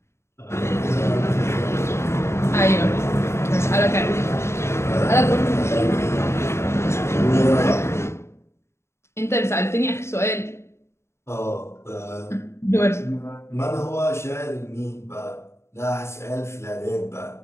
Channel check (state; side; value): late; right; 0.13 ms